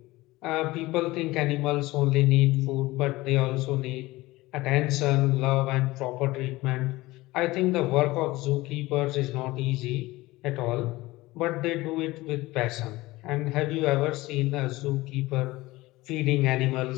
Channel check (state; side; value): quieter; right; 19.6 dB